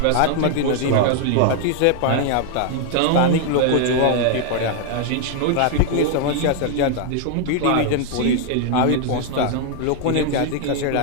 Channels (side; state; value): both; different; correlation 0.00